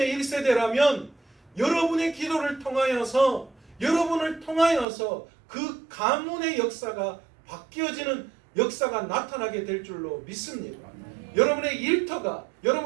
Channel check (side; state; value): left; drops out; at 4.9 s